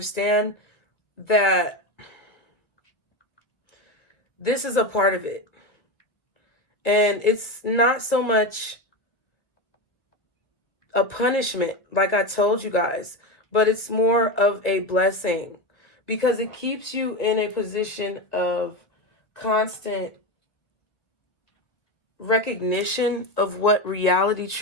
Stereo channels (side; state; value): right; late; 1.5 ms